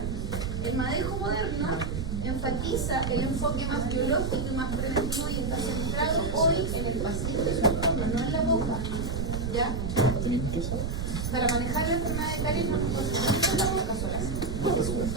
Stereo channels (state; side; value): noise; right; rumble, 2 dB below the sound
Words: El manejo moderno enfatiza el enfoque más biológico y más preventivo y está centrado hoy en el paciente, no en la boca, ¿ya? Para manejar la enfermedad de caries no nos concentramos en la boca sola, es un